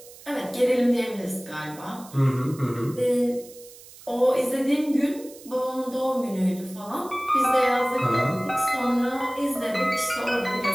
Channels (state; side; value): noise; right; hiss, 20 dB below the sound